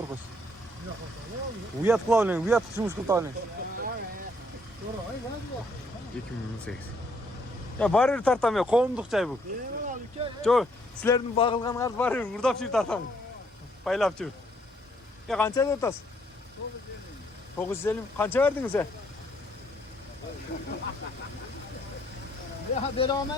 Uyat kılavlen, uyat kışımız kıltavlen. 2018. Ya barır tartamıyor, kovumduk çay bu. Çok, sizlerin bağılgan kartı barır, vurdap çift tartam. Paylap çift. Ya kança da otas? 950. Kança verdiniz sen? Ya berame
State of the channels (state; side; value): normal; both; correlation 0.68